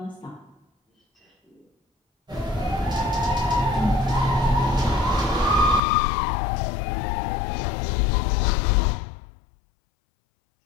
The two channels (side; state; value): right; drops out; at 5.8 s